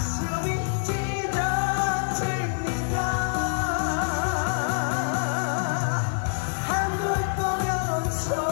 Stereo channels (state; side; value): silent; right; 56 dB below the other